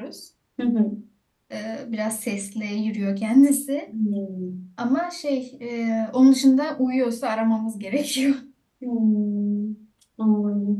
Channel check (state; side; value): identical; both; correlation 1.00